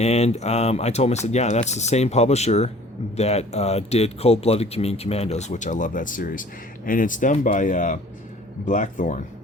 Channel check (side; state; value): both; normal; correlation 0.50